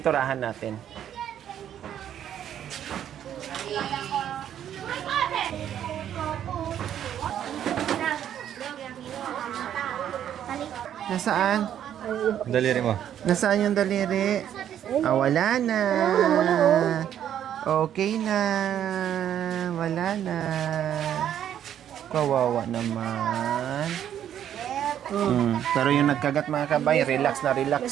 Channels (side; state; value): left; quieter; 10.2 dB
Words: natin. Nasaan? Daliri mo. Nasaan yung daliri? Wala na. Okay na. Wala na. Kawawa naman. Pero yung nagkagat mga kabay, relax na